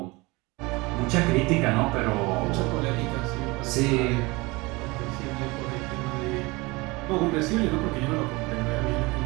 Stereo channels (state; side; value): quieter; left; 23.8 dB